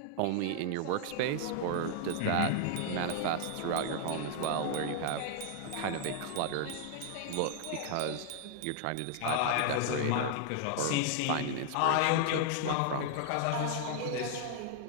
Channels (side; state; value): both; different; correlation 0.00